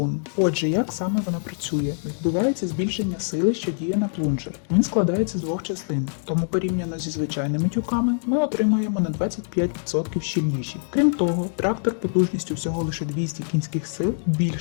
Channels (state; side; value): silent; right; digital silence